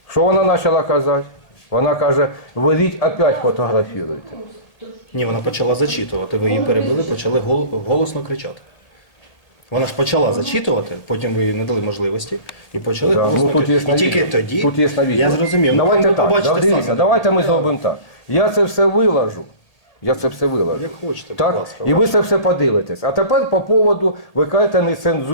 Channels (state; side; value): late; right; 1.8 ms